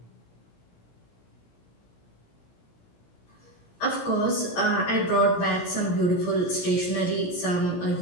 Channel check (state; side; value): late; right; 17 ms